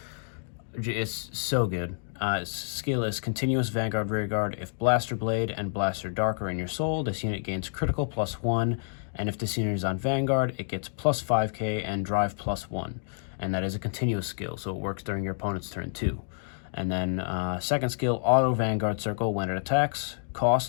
so good. Its skill is Continuous Vanguard Rearguard. If Blaster Blade and Blaster Dark are in your soul, this unit gains critical +1, and if this unit is on Vanguard, it gets +5k and Drive +1. And that is a continuous skill, so it works during your opponent's turn too. And then second skill, Auto Vanguard Circle. When it attacks,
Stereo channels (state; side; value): silent; right; digital silence